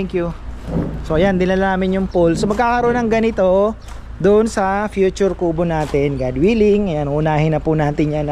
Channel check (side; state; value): both; identical; correlation 1.00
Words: you. So ayan, dinala namin yung poll. So magkakaroon ng ganito doon sa future kubo natin, God willing. Ayan, unahin na po natin yan